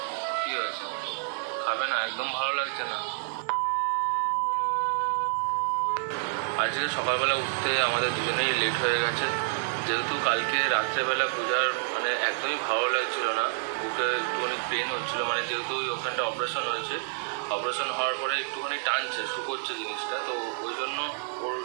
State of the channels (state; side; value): silent; left; digital silence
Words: কি হয়েছে, খাবে না? একদম ভালো লাগছে না। আজকে সকালবেলা উঠতে আমাদের দুজনেই লেট হয়ে গেছে, যেহেতু কালকে রাত্রেবেলা পূজার মানে একদমই ভালো লাগছিল না, বুকে একটুখানি পেন হচ্ছিল, মানে যেহেতু ওখানটা অপারেশন হয়েছে, অপারেশন হওয়ার পরে একটুখানি টানছে, শুকোচ্ছে জিনিসটা, তো ওই জন্য ওর